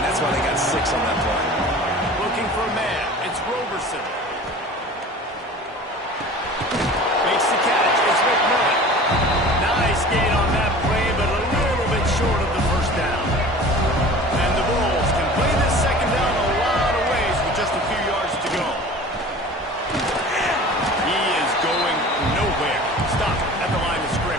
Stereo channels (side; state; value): both; normal; correlation 0.41